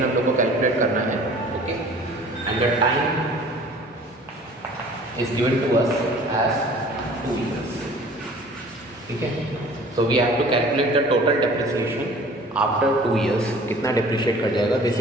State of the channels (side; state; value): both; normal; correlation 0.48